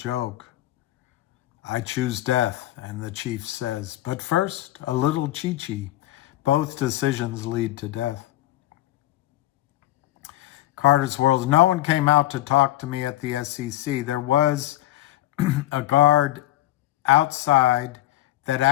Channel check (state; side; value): quieter; right; 15.5 dB